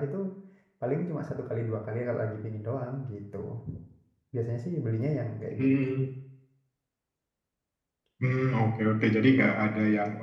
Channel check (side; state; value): both; identical; correlation 1.00